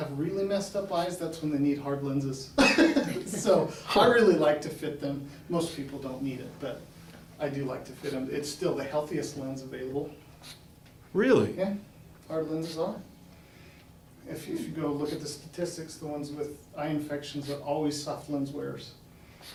really messed up eyes, that's when they need hard lenses. So I really like to fit them. Most people don't need it, but I do like to fit them. It's still the healthiest lens available. Really? Yeah, hard lenses are. If you go look at the statistics, the ones with eye infections are always soft lens wearers.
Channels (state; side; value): identical; both; correlation 1.00